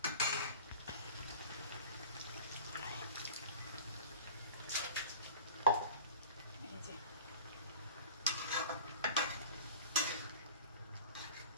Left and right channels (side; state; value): both; inverted; correlation -0.41